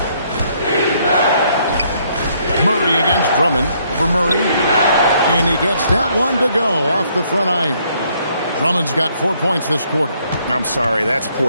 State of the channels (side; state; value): both; inverted; correlation -0.68